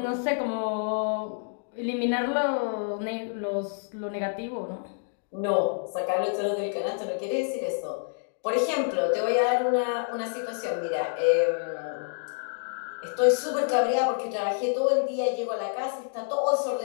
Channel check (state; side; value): silent; right; digital silence